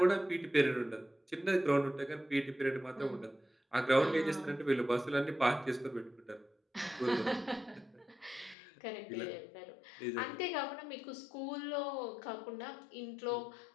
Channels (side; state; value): right; drops out; at 8.6 s